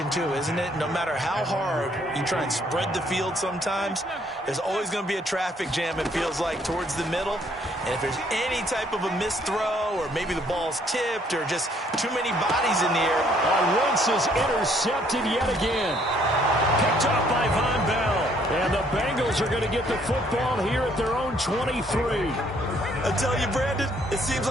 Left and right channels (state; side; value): normal; both; correlation 0.65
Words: too, isn't it? No matter how hard you try and spread the field sometimes, there's always going to be a traffic jam, it feels like, towards the middle. And if there's any type of a missed throw or maybe the ball's tipped or just too many bodies in the air. Wentz is intercepted yet again. Picked up by Von Bell. And the Bengals are going to get the football here at their own 23. I tell you, Brandon, it seems